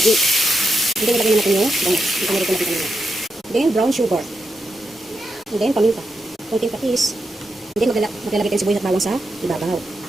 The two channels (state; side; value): normal; both; correlation 0.85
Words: Then, nilagay na natin yung bangus. Ito na rin natin kanina. Then, brown sugar. And then, paminta. Konting patis. And then, maglalagay tayo sibuyas at bawang sa ibabaw.